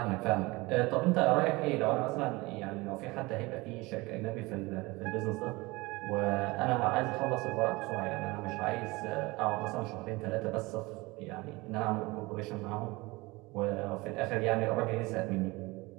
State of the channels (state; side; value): quieter; left; 23.0 dB